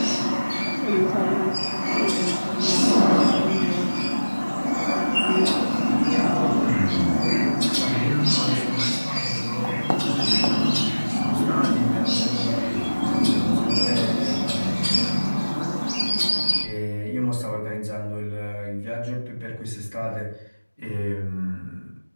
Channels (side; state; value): both; inverted; correlation -1.00